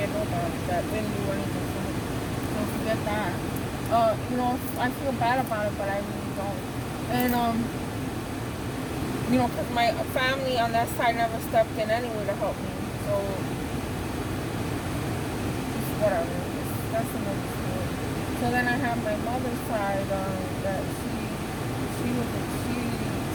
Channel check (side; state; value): both; identical; correlation 1.00